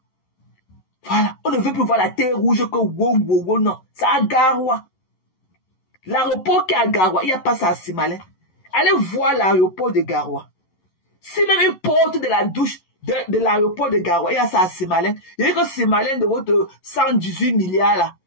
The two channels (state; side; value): late; right; 11 ms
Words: Voilà. On ne veut plus voir la terre rouge que wow, non. C'est à Garoua. L'aéroport qui est à Garoua, il n'y a pas ça à Simalin. Allez voir l'aéroport de Garoua. Si même une porte de la douche de l'aéroport de Garoua, il y a ça à Simalin. Il y a que Simalin de votre 118 milliards là.